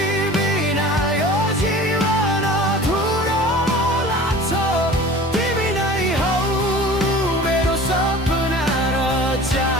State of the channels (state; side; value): normal; both; correlation 0.41